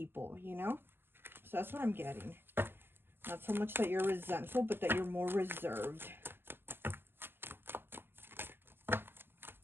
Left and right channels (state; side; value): late; left; 0.10 ms